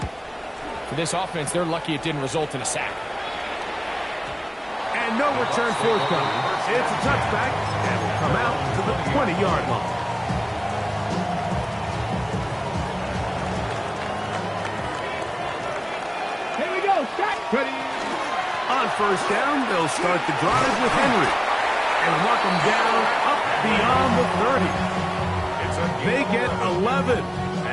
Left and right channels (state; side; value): identical; both; correlation 1.00